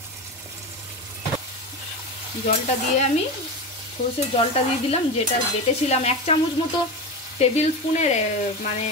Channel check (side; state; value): both; normal; correlation 0.22